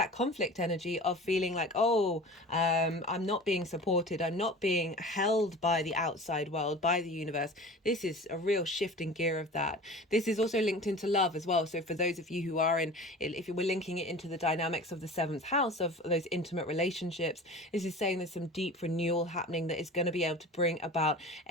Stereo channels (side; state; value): both; normal; correlation 0.38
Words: conflict energy of feeling like, I'm not being supported, I'm not being held by the outside world, by the universe. This is a real shift in gear of that. This is also linked into love as well. So for those of you who are in, if we're linking it into the dynamics of the 7th house of those intimate relationships, this is saying there's some deep renewal happening that is going to be able to bring about